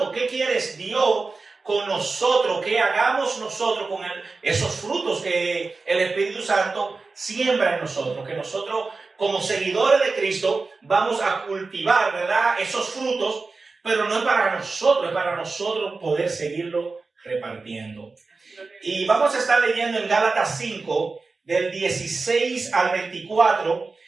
qué quiere Dios con nosotros, qué hagamos nosotros con esos frutos que el Espíritu Santo siembra en nosotros, que nosotros como seguidores de Cristo vamos a cultivar, ¿verdad? Esos frutos, pero no es para nosotros, es para nosotros poder seguirlo repartiendo. Y vamos a estar leyendo en Gálatas 5, del 16 al 24.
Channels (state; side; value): quieter; left; 4.0 dB